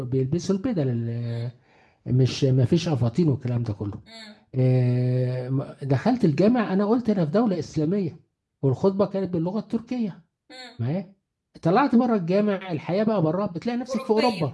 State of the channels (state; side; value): identical; both; correlation 1.00